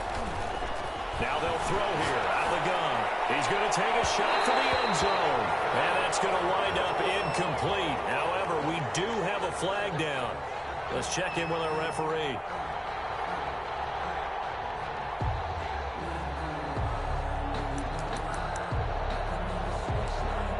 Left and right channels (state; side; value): identical; both; correlation 1.00